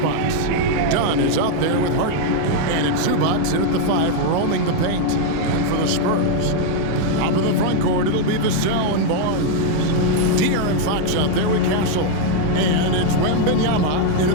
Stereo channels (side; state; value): both; different; correlation 0.00